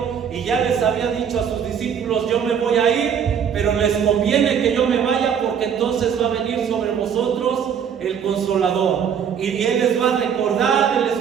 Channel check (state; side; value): quieter; left; 7.8 dB